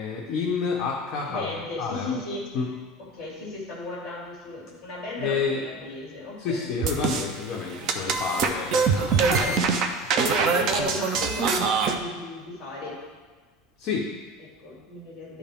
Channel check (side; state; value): both; normal; correlation 0.33